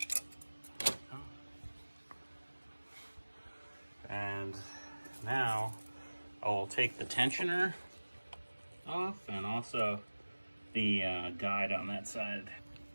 And now I will take the tensioner off and also the guide on that side.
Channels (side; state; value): both; inverted; correlation -1.00